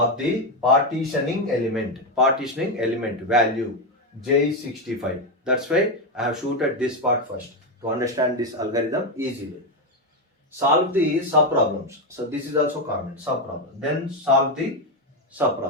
the partitioning element value. J is 65. That's why I have shooted this part first to understand this algorithm easily. Solve the sub problems. So this is also common, sub problem. Then solve the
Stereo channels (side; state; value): both; normal; correlation 0.08